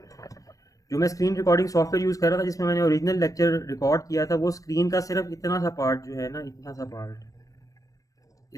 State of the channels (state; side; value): late; right; 0.16 ms